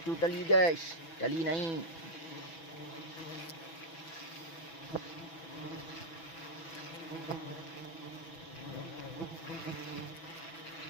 tali guys. Tali naik.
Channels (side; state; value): right; late; 6.1 ms